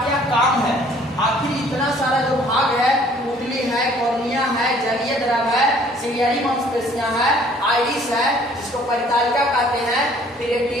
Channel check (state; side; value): normal; both; correlation 0.57